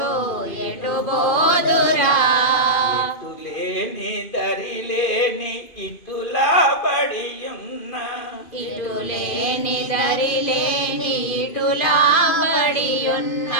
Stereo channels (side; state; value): right; late; 2.5 ms